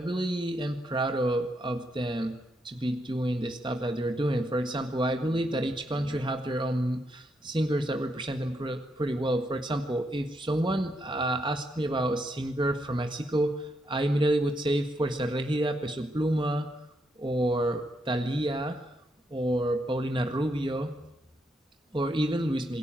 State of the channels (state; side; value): normal; both; correlation 0.79